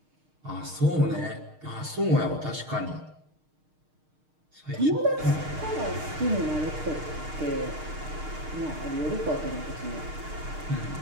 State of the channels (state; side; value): late; left; 6.5 ms